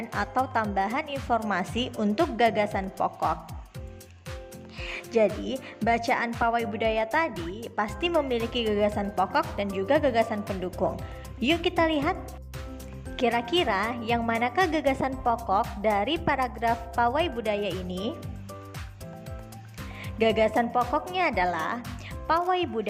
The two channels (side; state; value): both; identical; correlation 1.00